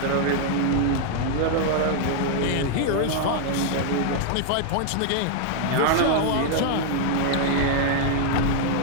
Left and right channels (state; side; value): different; both; correlation 0.00